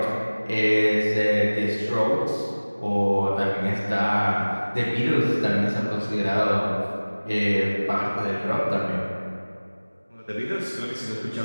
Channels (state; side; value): inverted; both; correlation -1.00